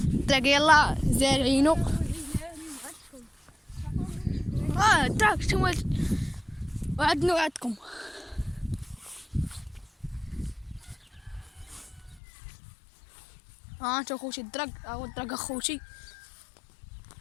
يلا زارعينو. الدرق نتوما وعدنا وعدكم. انتو اخوتي الدرق هو الدرق اخوتي.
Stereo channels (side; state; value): right; drops out; at 12.2 s